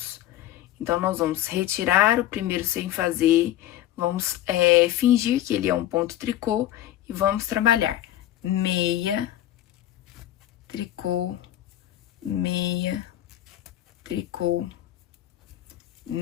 Então, nós vamos retirar o primeiro sem fazer, vamos fingir que ele é um ponto tricô e vamos trabalhar meia, tricô, meia, tricô,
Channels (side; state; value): right; quieter; 13.3 dB